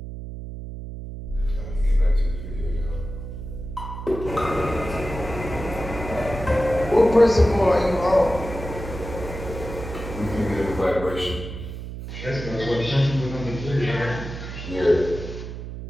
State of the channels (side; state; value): right; noise; hum, 9 dB below the sound